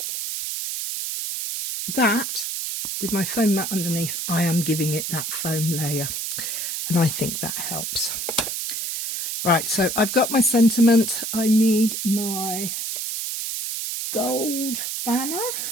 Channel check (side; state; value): right; noise; hiss, 3 dB below the sound